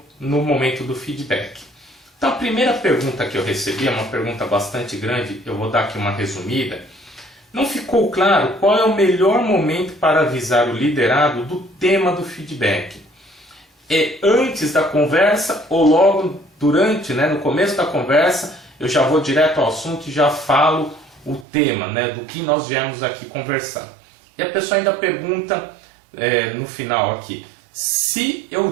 no momento do feedback. Então a primeira pergunta que eu recebi é uma pergunta bastante grande, eu vou dar aqui uma resumida. Não ficou claro qual é o melhor momento para avisar o liderado do tema do feedback. É antes da conversa ou logo durante, no começo da conversa, eu já vou direto ao assunto e já falo o tema, do que nós viemos aqui conversar. E a pessoa ainda pergunta no final aqui, se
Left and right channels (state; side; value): drops out; left; at 21.5 s